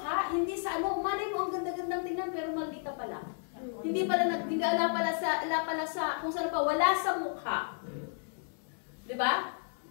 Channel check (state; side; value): silent; right; digital silence